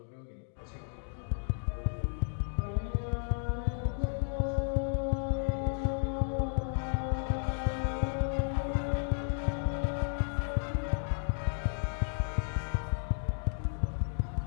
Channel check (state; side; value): silent; right; 56 dB below the other